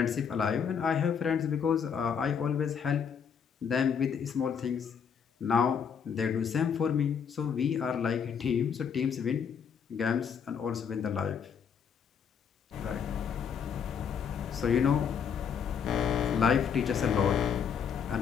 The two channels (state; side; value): quieter; right; 7.1 dB